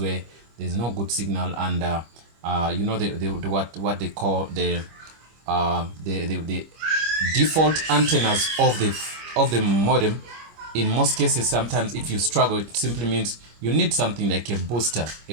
there's no good signal and you know what they call the default antennas of the modem. In most cases, sometimes if you struggle, it simply means you need something like a booster, a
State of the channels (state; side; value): late; left; 25 ms